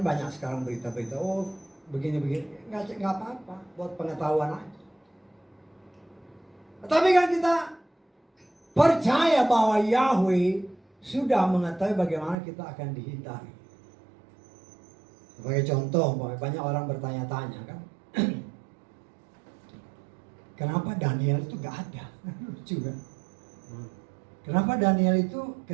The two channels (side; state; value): left; drops out; at 12.4 s